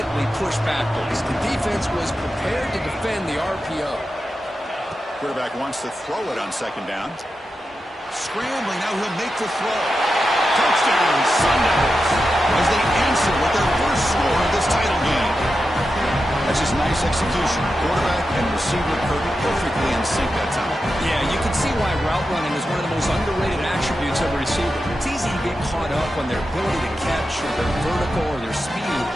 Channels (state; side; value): normal; both; correlation 0.90